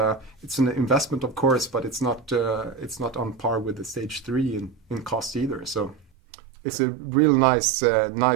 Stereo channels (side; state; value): left; drops out; at 6.1 s